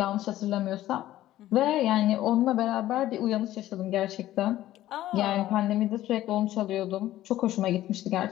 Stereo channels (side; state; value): right; quieter; 14.3 dB